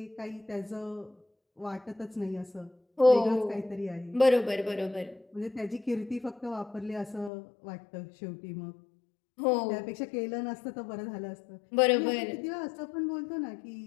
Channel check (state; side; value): drops out; right; at 7.3 s